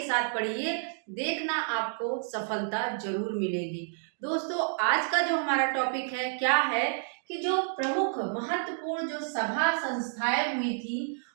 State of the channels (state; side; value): silent; left; digital silence